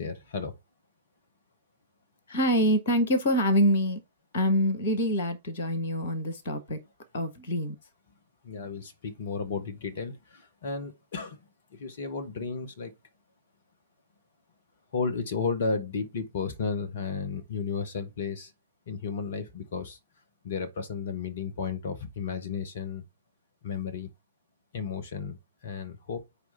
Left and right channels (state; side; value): inverted; both; correlation -0.33